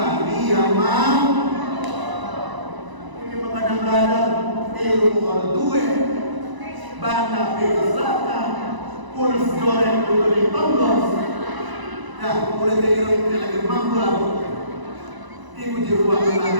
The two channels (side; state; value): left; late; 1.0 ms